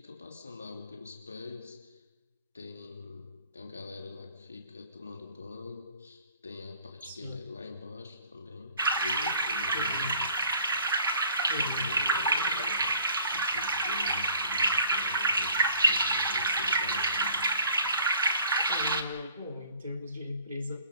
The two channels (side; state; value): both; inverted; correlation -0.54